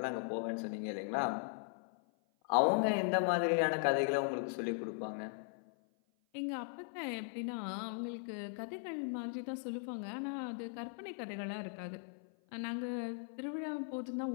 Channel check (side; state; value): right; silent; 52 dB below the other